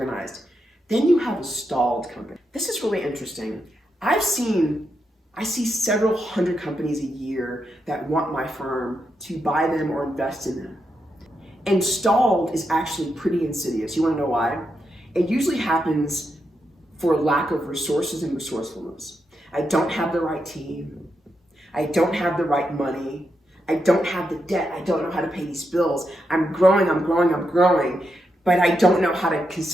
Then you have a stalled company. This is really interesting. I see several hundred companies a year that want my firm to buy them or invest in them. And stalled is actually pretty insidious. You want to know why? It usually happens for lack of resources and resourcefulness. I don't have the right team. I don't have the right money. I don't have the debt. I don't know how to pay these bills. I'm growing, but I don't know how to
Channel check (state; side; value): normal; both; correlation 0.84